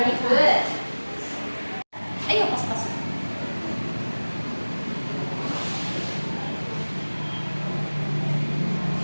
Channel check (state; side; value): inverted; both; correlation -1.00